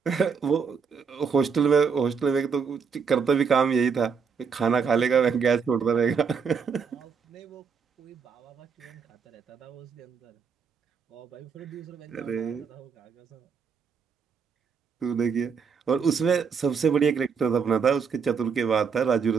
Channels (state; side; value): quieter; left; 6.0 dB